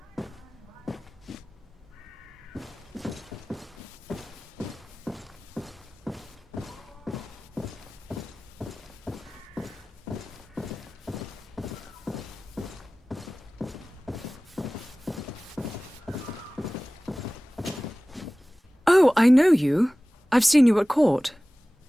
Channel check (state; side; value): normal; both; correlation 0.98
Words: Oh, I know you. I've seen you at court.